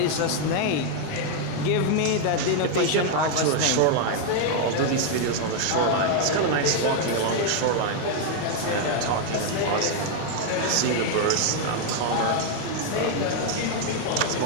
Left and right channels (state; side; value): different; both; correlation 0.00